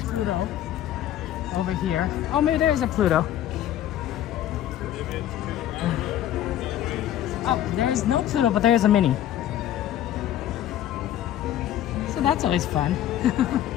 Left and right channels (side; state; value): right; quieter; 11.9 dB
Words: Pluto over here. Oh, maybe there's a Pluto. Oh, there's no Pluto, but there's a Minnie. So that's always fun.